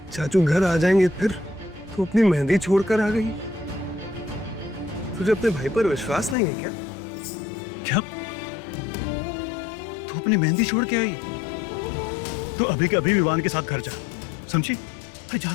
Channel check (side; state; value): right; drops out; at 6.4 s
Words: चाचू घर आ जाएंगे, फिर तू अपनी मेहंदी छोड़कर आ गई। तुझे अपने भाई पर विश्वास नहीं है क्या? क्या तू अपनी मेहंदी छोड़ के आई? तो अभी के अभी विवान के साथ घर जा, समझी? अरे